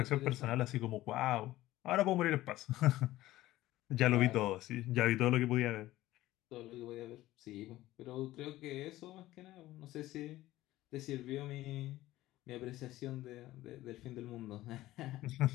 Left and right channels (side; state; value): right; quieter; 16.1 dB